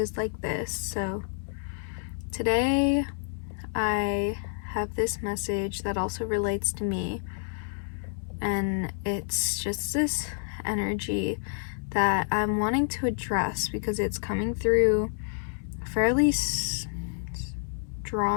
like this. So today I have this message that also relates to me, and it's just this energy that I'm wanting to address because it's coming through fairly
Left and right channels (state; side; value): silent; right; 59 dB below the other